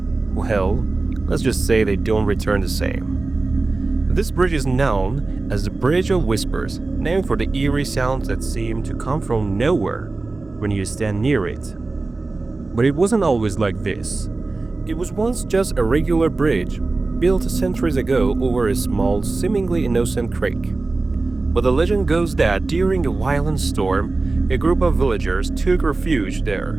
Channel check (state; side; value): quieter; left; 3.5 dB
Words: well, let's just say they don't return the same. This bridge is known as the Bridge of Whispers, named for the eerie sounds that seem to come from nowhere when you stand near it. But it wasn't always like this. It was once just a regular bridge, built centuries ago over a small, seemingly innocent creek. But the legend goes that during a violent storm, a group of villagers took refuge there.